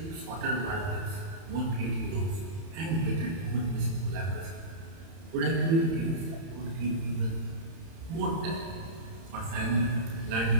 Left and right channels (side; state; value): left; late; 31 ms